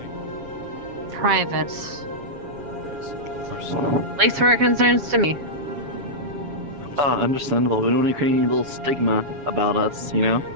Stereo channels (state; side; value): late; left; 7.2 ms